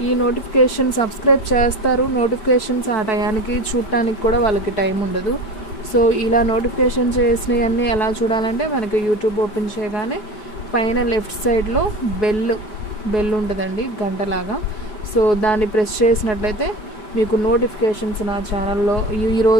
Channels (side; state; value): right; late; 4.7 ms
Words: ఈ నోటిఫికేషన్ సబ్స్క్రైబ్ చేస్తారు, నోటిఫికేషన్స్ ఆ టయానికి చూడటానికి కూడా వాళ్ళకి టైం ఉండదు. సో ఇలా నోటిఫికేషన్ చేసినవన్నీ ఎలా చూడాలంటే మనకి యూట్యూబ్ ఓపెన్ చేయగానే పైన లెఫ్ట్ సైడ్లో బెల్ ఉంటుందండి గంటలాగా. సో దాన్ని ప్రెస్ చేసినట్లయితే మీకు నోటిఫికేషన్స్ నా ఛానల్లో